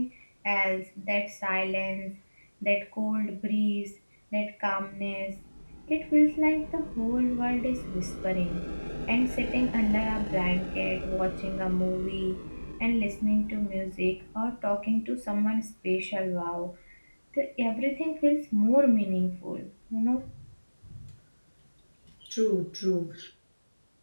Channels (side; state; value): both; inverted; correlation -1.00